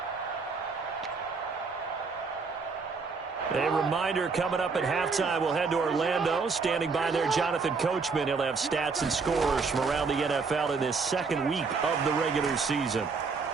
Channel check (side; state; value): left; quieter; 4.7 dB